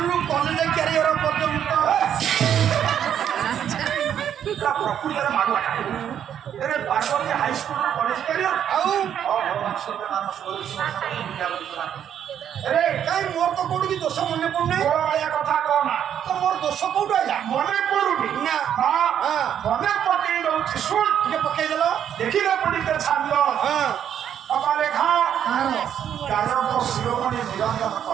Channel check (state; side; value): quieter; left; 9.4 dB